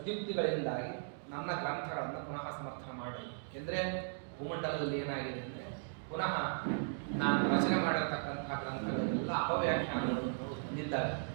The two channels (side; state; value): left; silent; digital silence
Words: ನನ್ನ ಗ್ರಂಥಗಳನ್ನು ಪುನಃ ಸಮರ್ಥನೆ ಮಾಡ್ರಿ. ಏಕೆಂದರೆ ಭೂಮಂಡಲದಲ್ಲಿ ಏನಾಗಿದೆ ಅಂದರೆ ಪುನಃ ನಾನು ರಚನೆ ಮಾಡಿರ್ತಕ್ಕಂತಹ ಗ್ರಂಥಗಳೆಲ್ಲ ಅಪವ್ಯಾಖ್ಯಾನಗಳನ್ನು ಹೊಂದಿದ್ದಾರೆ.